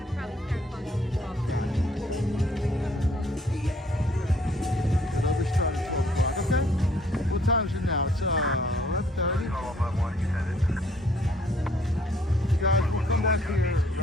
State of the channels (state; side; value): normal; both; correlation 0.63